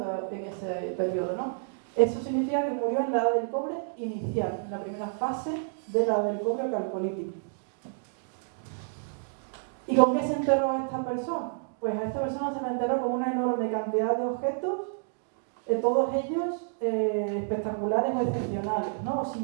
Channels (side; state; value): left; silent; digital silence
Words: en ese periodo, ¿no? Eso significa que murió en la edad del cobre inicial, en la primera fase de la edad del cobre calcolítico. ¿Y con qué se enterró a esta persona? Pues a esta persona se la enterró con una enorme cantidad de objetos, todos ellos espectaculares o excepcionales, ¿no?